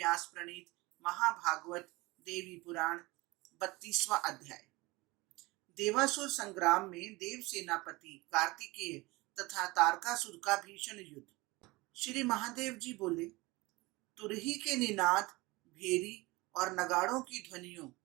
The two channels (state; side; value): quieter; left; 22.5 dB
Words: प्रणीत महाभागवत देवी पुराण 32वां अध्याय। देवासुर संग्राम में देव सेनापति कार्तिकेय तथा तारकासुर का भीषण युद्ध। श्री महादेव जी बोले, तुरही के निनाद, भेरी और नगाड़ों की ध्वनियों,